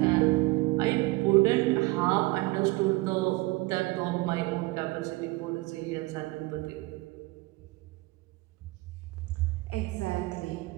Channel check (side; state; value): left; quieter; 22.2 dB